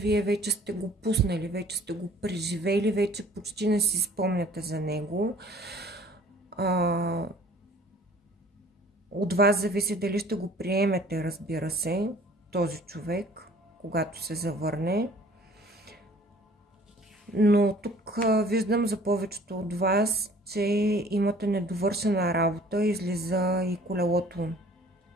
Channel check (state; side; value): normal; both; correlation 0.52